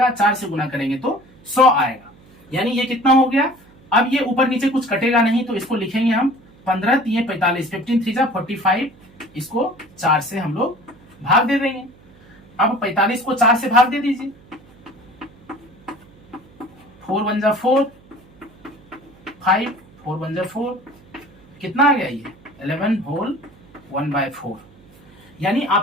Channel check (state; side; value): noise; right; hum, 26 dB below the sound